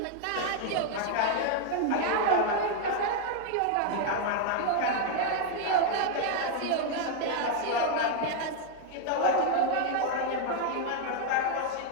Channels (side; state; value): both; different; correlation 0.00